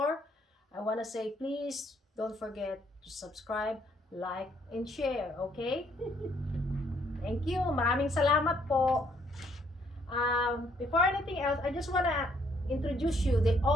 I want to say please don't forget to subscribe, like, and share, okay? Thank you. Maraming salamat po. Before anything else, I just want to introduce you the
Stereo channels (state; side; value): normal; both; correlation 0.68